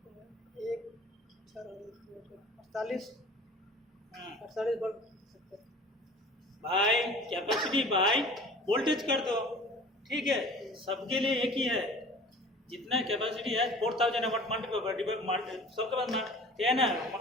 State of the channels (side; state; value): both; normal; correlation 0.44